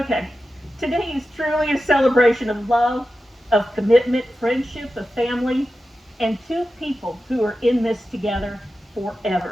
Today is truly a celebration of love, of commitment, friendship, of family, and two people who are in this together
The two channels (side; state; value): both; normal; correlation 0.92